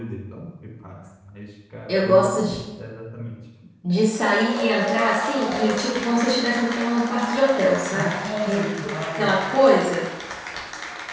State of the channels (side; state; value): both; identical; correlation 1.00